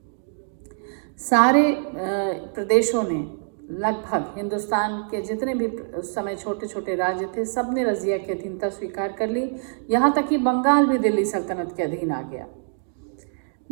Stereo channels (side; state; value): left; silent; digital silence